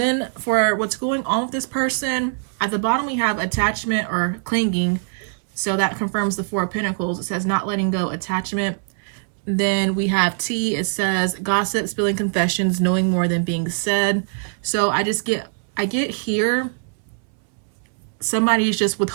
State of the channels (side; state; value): left; silent; 64 dB below the other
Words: for what's going on with this person, at the bottom we have attachment or clinging. So that confirms the Four of Pentacles. It says not letting go, attachment. Then we have T. It says gossip, spilling confessions, knowing more than being said. So I get here, somebody's just